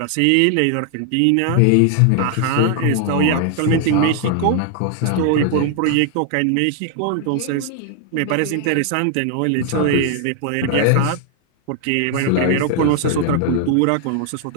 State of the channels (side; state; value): both; different; correlation 0.00